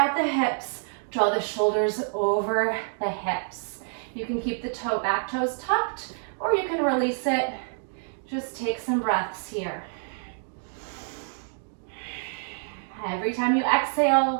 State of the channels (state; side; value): silent; left; digital silence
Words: the hips. Draw the shoulders over the hips. You can keep the back toes tucked, or you can release it. Just take some breaths here. Every time you